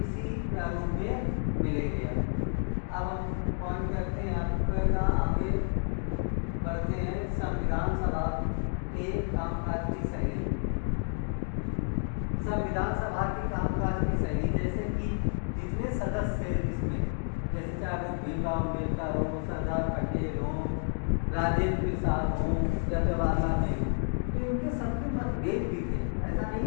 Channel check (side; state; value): right; silent; 58 dB below the other